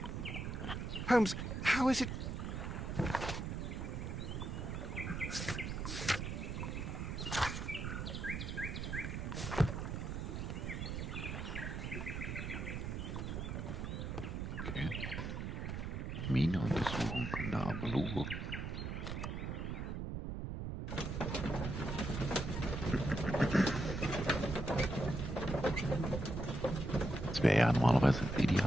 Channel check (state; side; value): noise; right; rumble, 4 dB below the sound